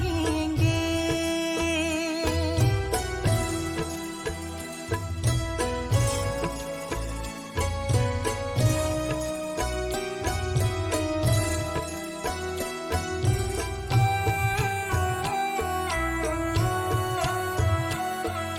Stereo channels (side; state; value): both; identical; correlation 1.00